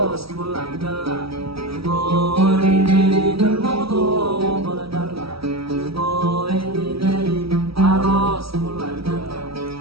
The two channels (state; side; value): late; left; 0.76 ms